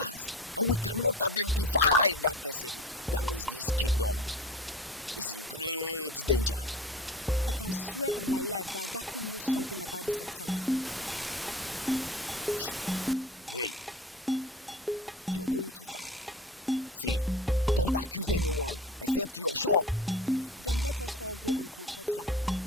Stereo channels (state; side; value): normal; both; correlation 0.36